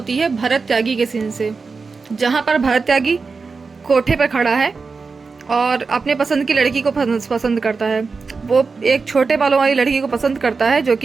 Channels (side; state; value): left; quieter; 4.6 dB